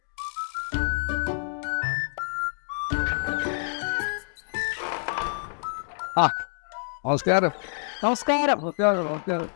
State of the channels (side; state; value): right; silent; digital silence